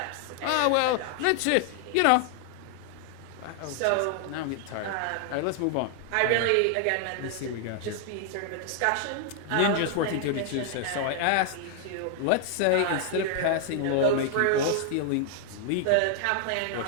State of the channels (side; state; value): both; different; correlation 0.00